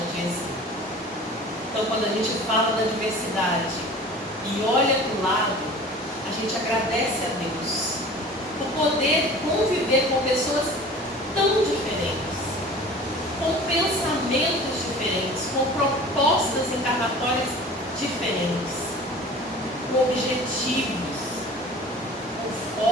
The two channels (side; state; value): both; normal; correlation 0.42